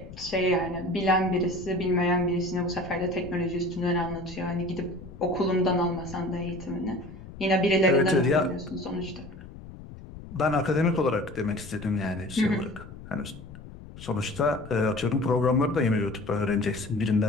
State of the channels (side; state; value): left; noise; rumble, 15 dB below the sound